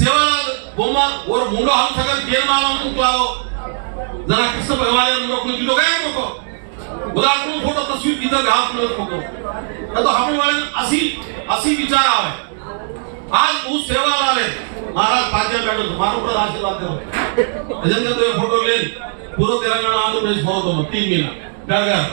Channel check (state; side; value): silent; left; digital silence